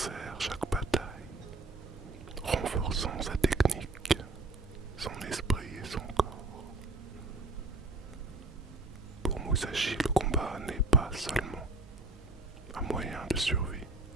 chaque bataille, renforçant sa technique, son esprit et son corps. Pour Musashi, le combat n'est pas seulement un moyen de survie,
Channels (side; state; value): left; quieter; 3.2 dB